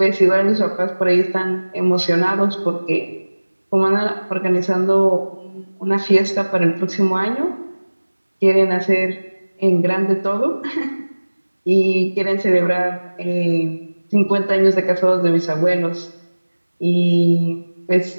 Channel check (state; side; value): inverted; both; correlation -1.00